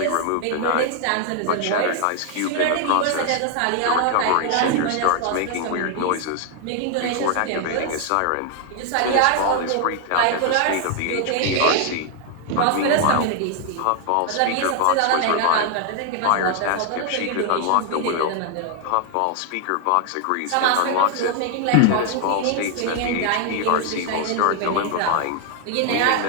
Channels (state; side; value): different; both; correlation 0.00